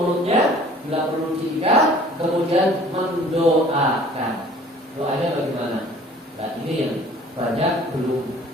Bila perlu diikat, kemudian mendoakan. Doanya bagaimana? Nah, ini yang banyak belum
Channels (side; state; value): both; normal; correlation 0.51